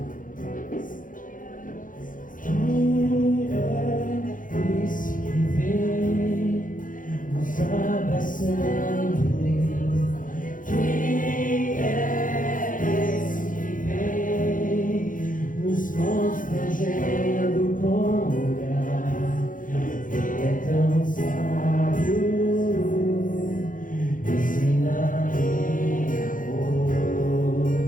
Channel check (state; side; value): late; right; 0.39 ms